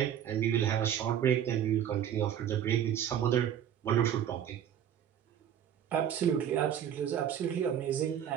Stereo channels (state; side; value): quieter; left; 9.7 dB